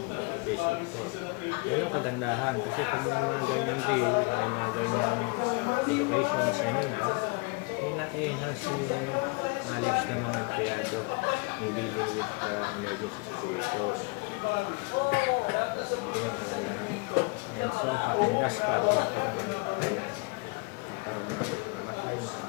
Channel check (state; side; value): quieter; right; 30.2 dB